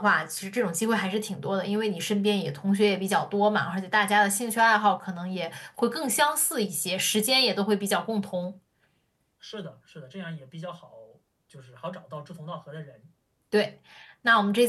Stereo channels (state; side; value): identical; both; correlation 1.00